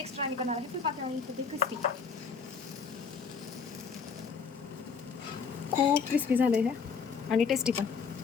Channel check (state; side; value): quieter; right; 5.7 dB